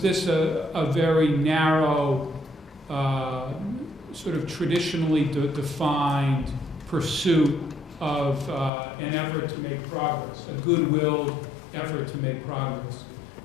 a very narrow, sort of traditionally defined pursuit of an effort to make progress, a good-willed effort to make progress?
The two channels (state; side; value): drops out; right; at 8.7 s